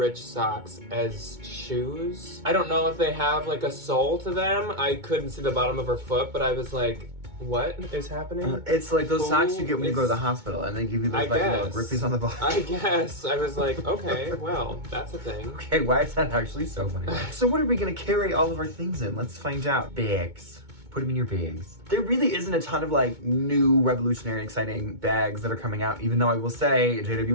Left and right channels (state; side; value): late; left; 2.2 ms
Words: socks as shoes. I don't know if they have like a sole to them. I couldn't see the bottom of her foot, but I was like, what is happening? It's like those socks you get when you go to the It's- hospital and they give you those I like little guess. grippies on the bottom. I guess. I was like, okay, well, that's a thing. Okay, why is that actually so funny? So what are we gonna carry all of our things in? Let's find out. Bags. Put them in your bags. There really isn't a ton of like new revolutionary exciting bags that are coming out, even though I will say